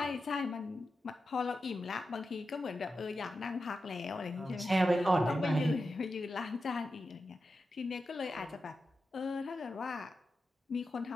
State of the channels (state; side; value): normal; both; correlation 0.90